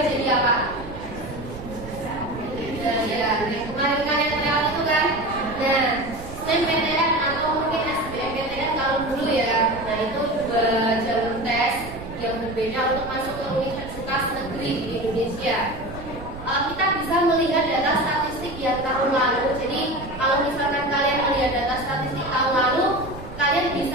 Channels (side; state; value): right; noise; rumble, 13 dB below the sound